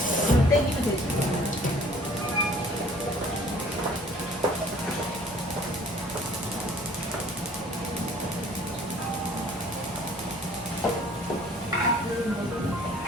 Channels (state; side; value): normal; both; correlation 0.53